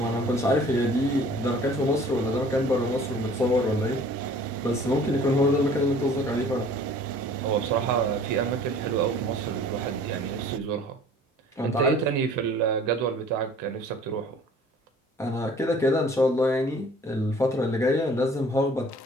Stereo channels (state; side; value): normal; both; correlation 0.50